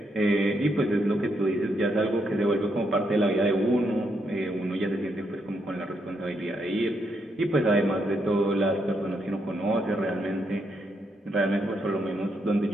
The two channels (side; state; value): both; normal; correlation 0.78